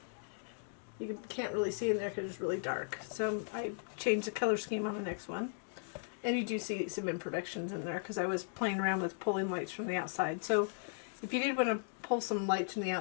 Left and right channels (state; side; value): silent; right; digital silence